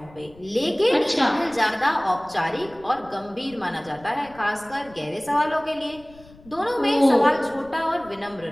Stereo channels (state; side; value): noise; left; rumble, 24 dB below the sound